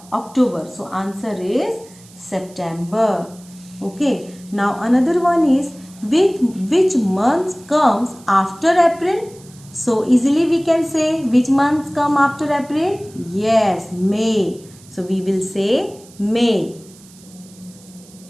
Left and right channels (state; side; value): noise; right; hiss, 24 dB below the sound